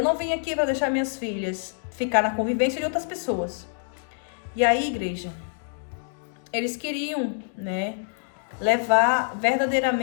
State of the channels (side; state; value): right; silent; digital silence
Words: não vim aqui para deixar minhas filhas ficar na convivência de outras pessoas. E aí, igreja, eles queriam, né, levar